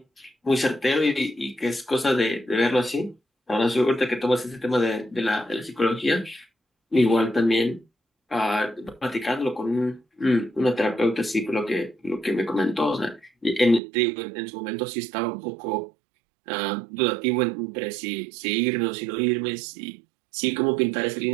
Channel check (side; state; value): left; drops out; at 13.8 s